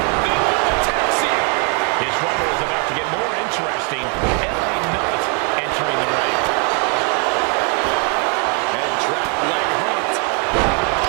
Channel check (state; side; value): quieter; left; 37.7 dB